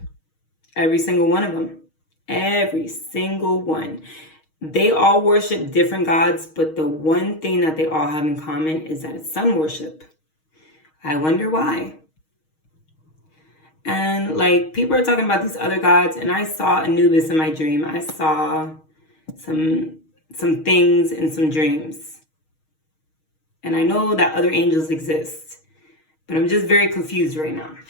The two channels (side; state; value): right; late; 6.4 ms